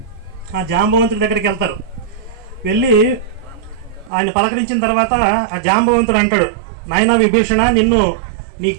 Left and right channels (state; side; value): drops out; left; at 4.1 s